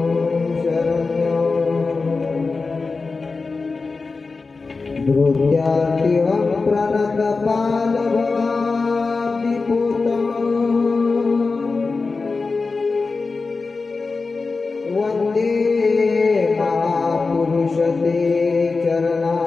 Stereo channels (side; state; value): right; quieter; 4.1 dB